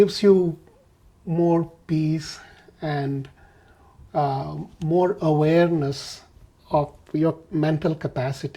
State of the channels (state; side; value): identical; both; correlation 1.00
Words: you more peace and more awareness of your mental